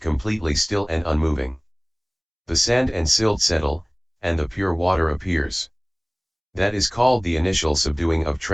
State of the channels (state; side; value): identical; both; correlation 1.00